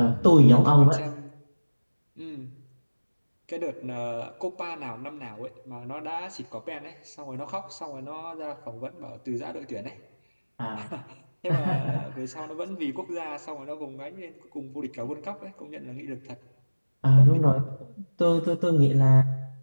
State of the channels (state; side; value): inverted; both; correlation -1.00